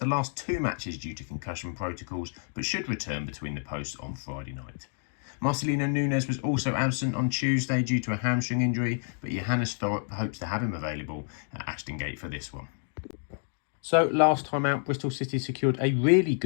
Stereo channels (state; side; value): silent; right; 58 dB below the other